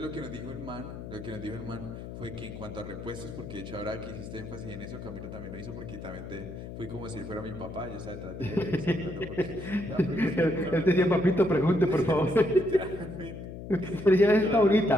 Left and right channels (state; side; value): noise; left; hum, 10 dB below the sound